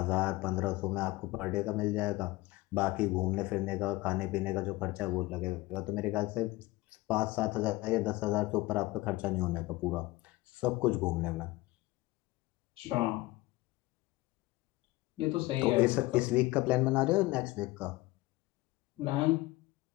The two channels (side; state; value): right; quieter; 19.8 dB